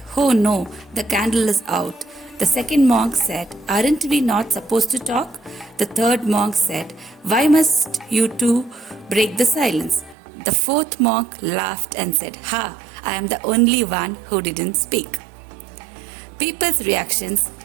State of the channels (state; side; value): drops out; left; at 10.2 s